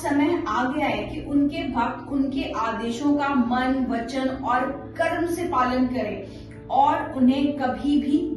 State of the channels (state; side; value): identical; both; correlation 1.00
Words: आ गया है कि उनके भक्त उनके आदेशों का मन, वचन और कर्म से पालन करें और उन्हें कभी भी